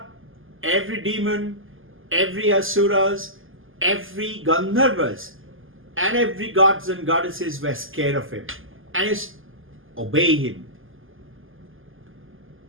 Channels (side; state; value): left; late; 0.59 ms